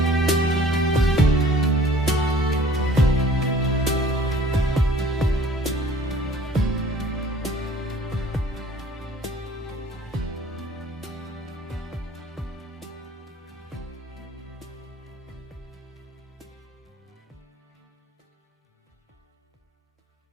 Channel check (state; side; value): normal; both; correlation 0.52